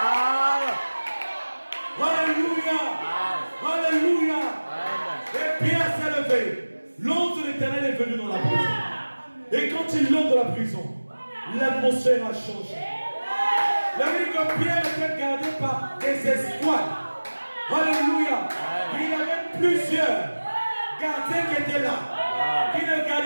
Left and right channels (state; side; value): inverted; both; correlation -1.00